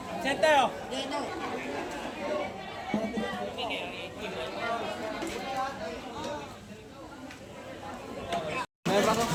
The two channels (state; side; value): identical; both; correlation 1.00